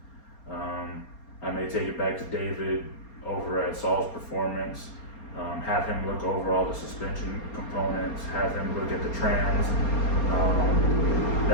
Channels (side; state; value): right; late; 4.3 ms